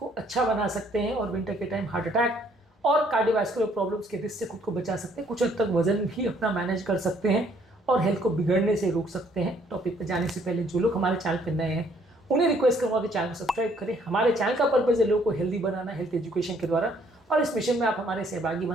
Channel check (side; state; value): both; normal; correlation 0.64